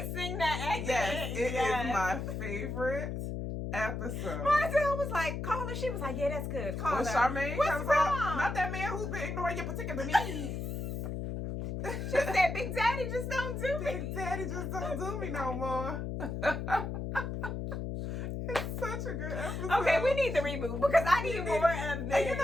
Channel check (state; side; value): noise; left; hum, 4 dB below the sound